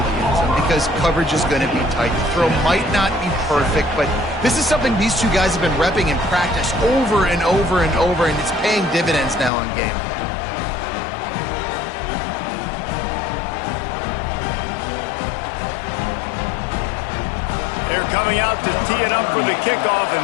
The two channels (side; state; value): right; drops out; at 9.5 s